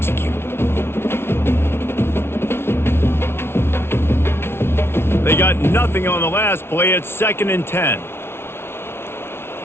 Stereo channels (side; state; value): right; late; 0.12 ms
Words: They got nothing on the last play. It's 2nd and 10.